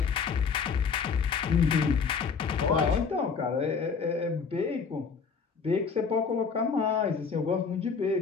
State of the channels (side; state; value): right; quieter; 5.6 dB